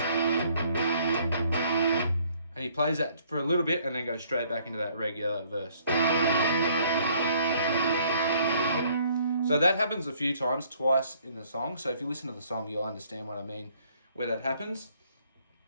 and he plays that for a little bit and then goes straight back into that regular verse. So that happens a few times, twice in the song. So if you listen to the song, you'll understand what I mean where that happens.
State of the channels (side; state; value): both; inverted; correlation -0.63